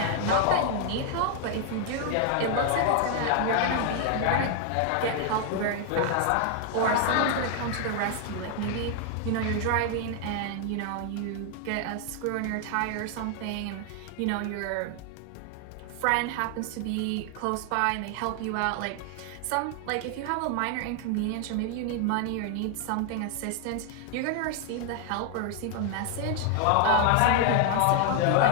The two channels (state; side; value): different; both; correlation 0.00